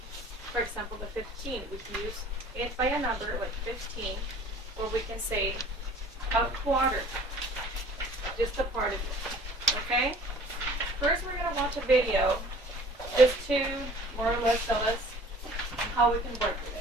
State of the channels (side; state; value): both; normal; correlation 0.49